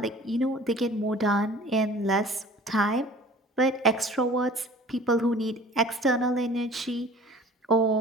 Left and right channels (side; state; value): both; normal; correlation 0.46